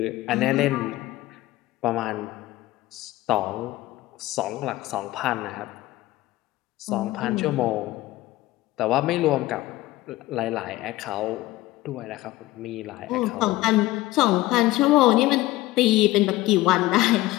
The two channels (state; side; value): quieter; right; 17.4 dB